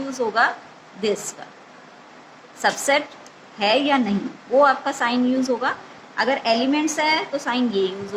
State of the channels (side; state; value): both; identical; correlation 1.00